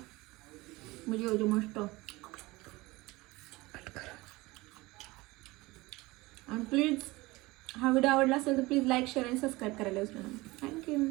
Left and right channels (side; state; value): left; quieter; 21.5 dB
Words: म्हणजे मस्त. आणि प्लीज हा व्हिडिओ आवडला असेल तर प्लीज लाईक शेअर आणि सबस्क्राईब करायला विसरू नका. थँक्यू.